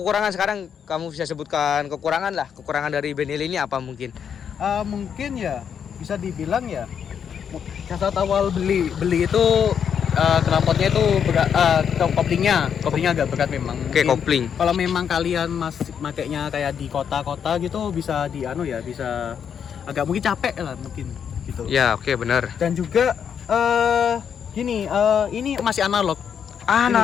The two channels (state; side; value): quieter; right; 7.8 dB